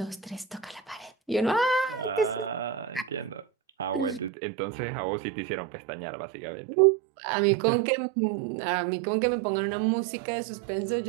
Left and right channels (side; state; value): left; drops out; at 4.3 s